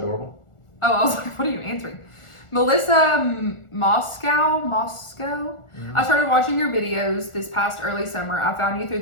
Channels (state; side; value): late; right; 1.4 ms